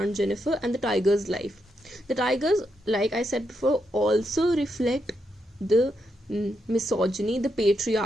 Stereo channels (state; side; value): normal; both; correlation 0.82